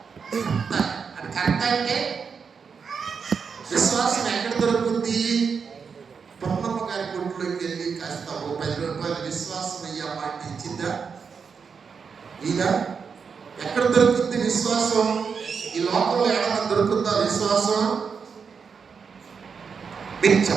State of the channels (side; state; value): left; quieter; 5.9 dB